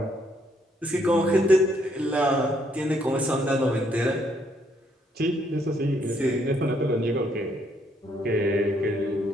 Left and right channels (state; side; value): normal; both; correlation 0.71